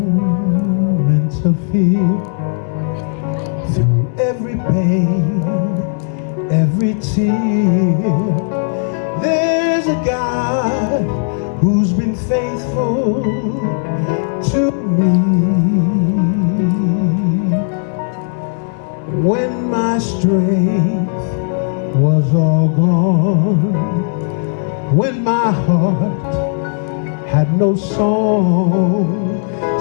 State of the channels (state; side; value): silent; right; 65 dB below the other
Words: of fear, through every pain, every tear, there's a God who's been faithful to me. When my strength was all gone, when my heart had no song,